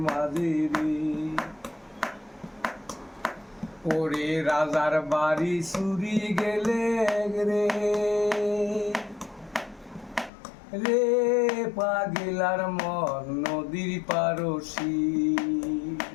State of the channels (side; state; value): right; drops out; at 10.3 s